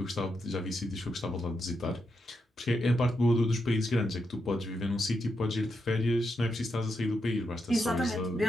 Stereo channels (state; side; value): normal; both; correlation 0.84